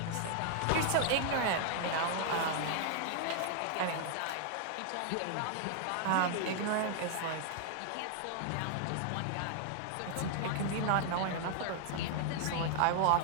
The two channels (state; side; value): different; both; correlation -0.01